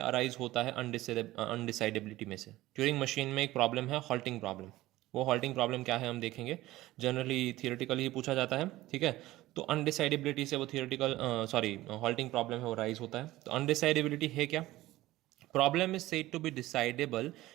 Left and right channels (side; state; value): left; quieter; 16.9 dB